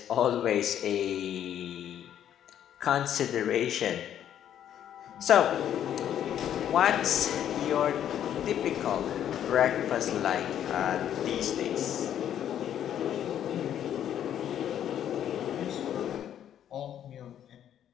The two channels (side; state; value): right; quieter; 10.2 dB